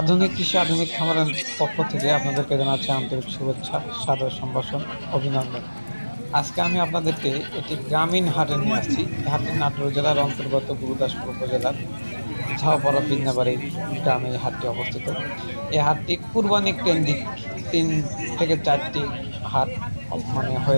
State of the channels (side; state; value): both; inverted; correlation -1.00